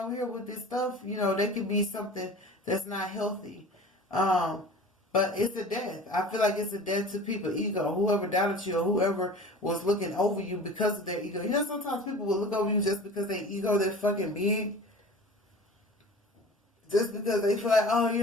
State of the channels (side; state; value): both; normal; correlation 0.40